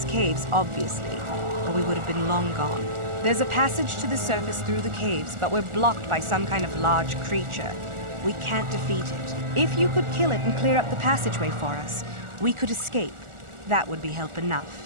caves, obviously, or we would have been long gone. There's a passage to the surface through the caves, but we're blocked by some kind of large creature. We can't defeat it. If you could kill it and clear up the passageway for us, we could escape. That would be help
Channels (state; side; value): late; left; 1.4 ms